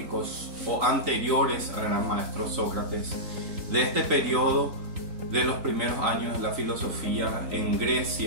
o anteriores al gran maestro Sócrates, de este periodo de los primeros años de la filosofía en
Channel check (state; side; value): late; left; 3.8 ms